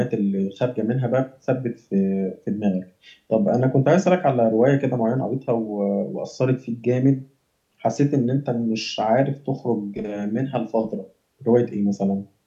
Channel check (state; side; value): identical; both; correlation 1.00